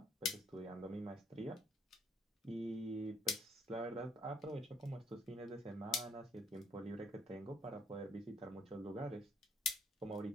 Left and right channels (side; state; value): both; normal; correlation 0.67